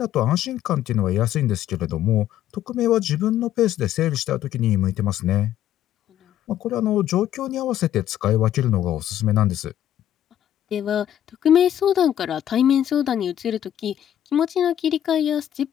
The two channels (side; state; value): right; quieter; 11.3 dB